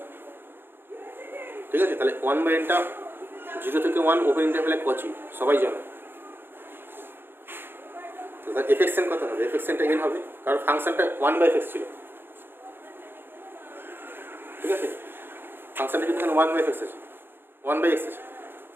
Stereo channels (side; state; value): left; late; 0.10 ms